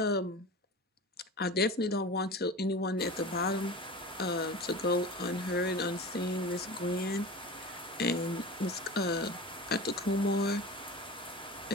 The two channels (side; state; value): both; normal; correlation 0.32